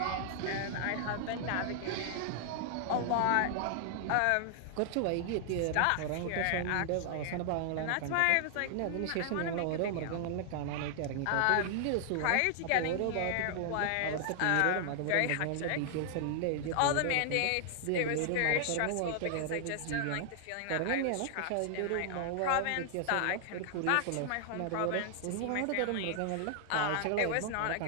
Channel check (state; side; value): different; both; correlation 0.00